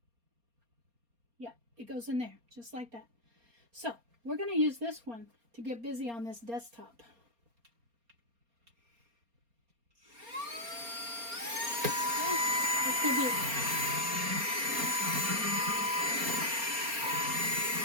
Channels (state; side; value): late; left; 4.3 ms